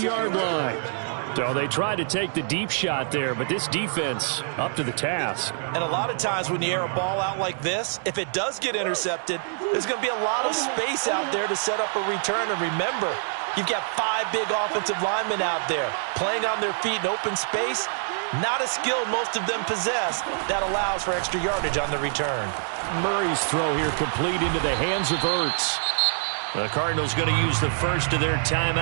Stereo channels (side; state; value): left; silent; 60 dB below the other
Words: line. So they tried to take the deep shot there, but this defense up to the task. And a lot of times when you air a ball out like this, if it does get intercepted, there's going to be a lot of space out there to set up a return. And remember, you've got 5 big offensive linemen out there playing on their feet in open space. Not a skill most of them possess that allows for extra yardage on the return. Murray's throw here complete into the hands of Ertz. The Cardinals going to use the first of their